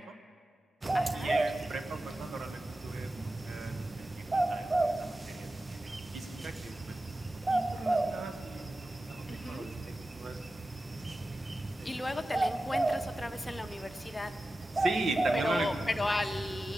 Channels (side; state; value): both; normal; correlation 0.93